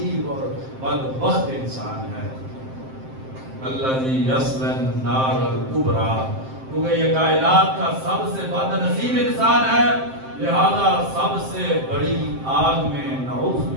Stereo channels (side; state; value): left; late; 7.6 ms